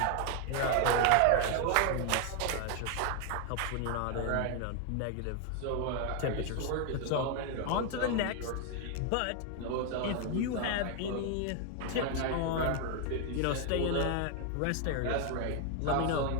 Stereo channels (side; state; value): both; different; correlation 0.00